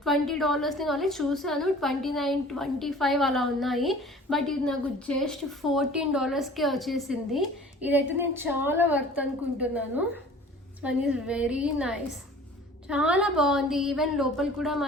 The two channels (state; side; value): normal; both; correlation 0.46